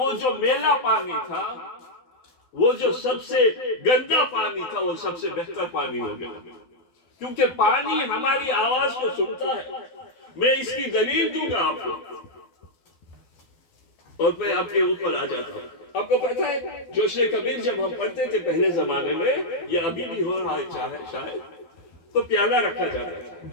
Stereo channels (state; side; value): late; right; 12 ms